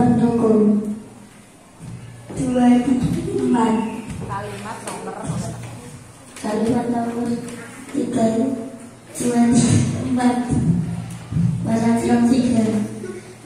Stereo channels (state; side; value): identical; both; correlation 1.00